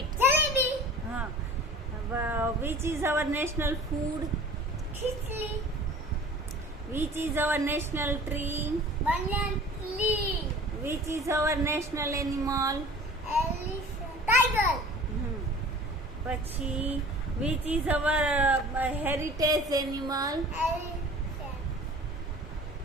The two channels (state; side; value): normal; both; correlation 0.44